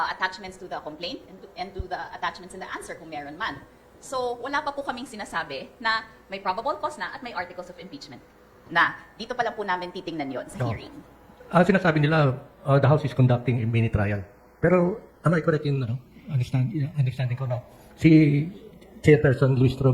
to the complaint and to the attachments in the answer kung meron man. So, wala pa po kaming sinasabi na may probable cause na at may articles of impeachment na dito pa lang po namin titingnan yon sa hearing. Ang sinasabi nila, the House is conducting a mini trial. Pero, am I correct in understanding ko na si Chairperson Luis Tro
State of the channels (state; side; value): identical; both; correlation 1.00